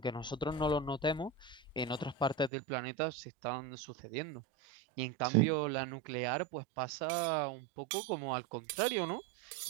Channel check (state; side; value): drops out; left; at 2.5 s